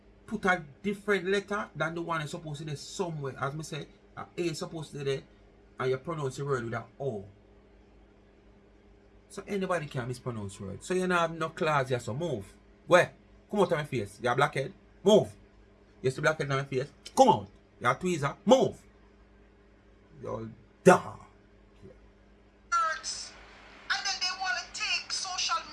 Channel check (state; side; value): identical; both; correlation 1.00